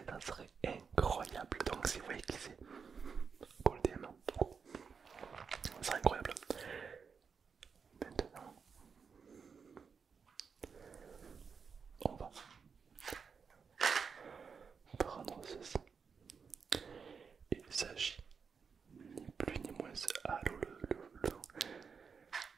Ça serait incroyable. Donc si vous voyez qui c'est, go le DM. C'est incroyable. Maintenant, on va prendre ceci. Il s'agit ni plus ni moins. Allô,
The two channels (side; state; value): left; quieter; 5.9 dB